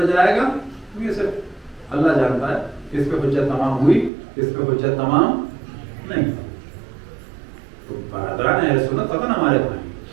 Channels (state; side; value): drops out; left; at 4.1 s